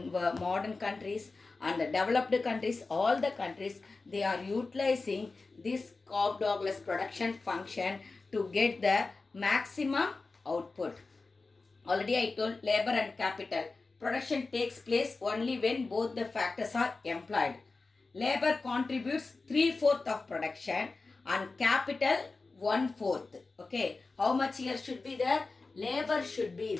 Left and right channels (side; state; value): right; quieter; 3.8 dB